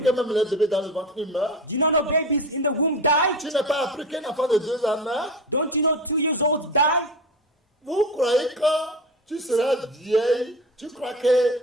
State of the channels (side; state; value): both; normal; correlation 0.27